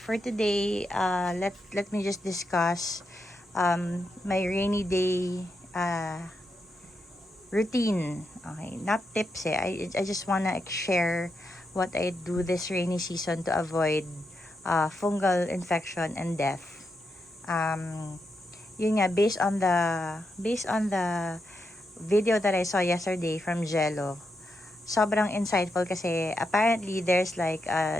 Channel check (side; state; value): both; normal; correlation 0.84